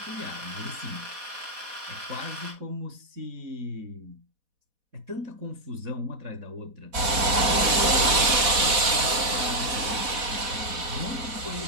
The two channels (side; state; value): left; late; 4.1 ms